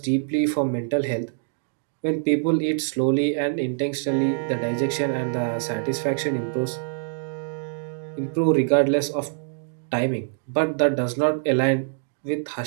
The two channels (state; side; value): silent; left; digital silence